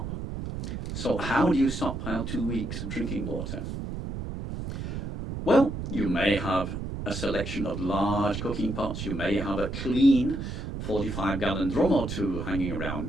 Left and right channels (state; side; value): noise; right; rumble, 5 dB below the sound